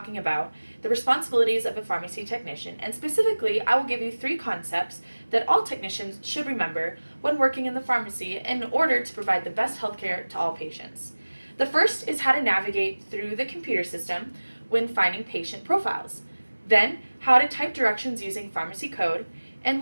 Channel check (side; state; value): both; inverted; correlation -1.00